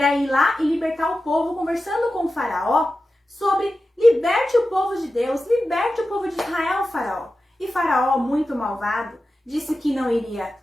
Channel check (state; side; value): normal; both; correlation 0.93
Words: ir lá e libertar o povo, conversando com o Faraó sobre liberte o povo de Deus, liberte o povo de Israel, Faraó. E Faraó, muito malvado, disse que não iria